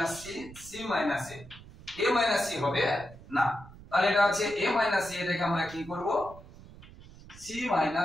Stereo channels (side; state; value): right; noise; rumble, 19 dB below the sound